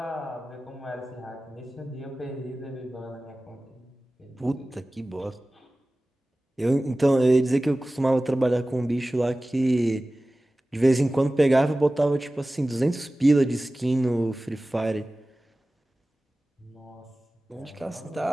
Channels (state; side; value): normal; both; correlation 0.97